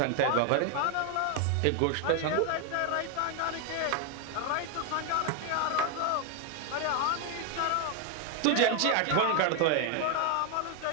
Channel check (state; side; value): different; both; correlation 0.01